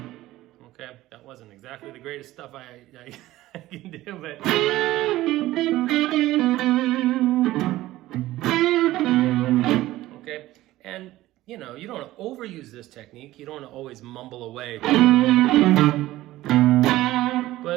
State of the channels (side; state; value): left; quieter; 16.3 dB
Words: Okay, that wasn't exactly the greatest stuff I can do, but... Okay, and you know, you don't want to overuse this technique. You don't want to always mumble away.